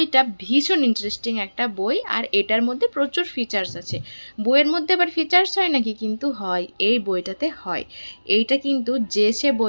ভীষণ ইন্টারেস্টিং একটা বই, আর এটার মধ্যে প্রচুর ফিচার্স আছে। বইয়ের মধ্যে আবার ফিচার্স হয় নাকি? কিন্তু হয়, এই বইটাতে হয়। এইটা কিন্তু যে সে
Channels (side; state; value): both; inverted; correlation -1.00